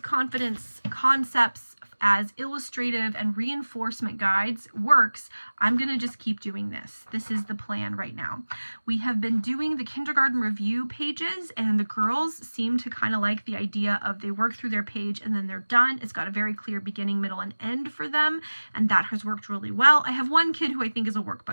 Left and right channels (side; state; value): both; inverted; correlation -1.00